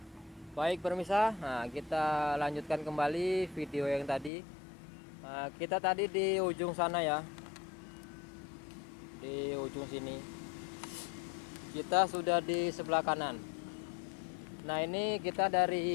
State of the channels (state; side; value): drops out; right; at 4.3 s